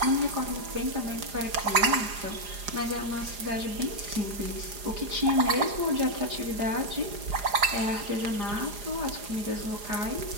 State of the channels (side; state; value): left; late; 4.9 ms